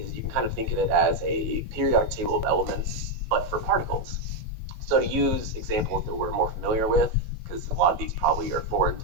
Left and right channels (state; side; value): late; left; 18 ms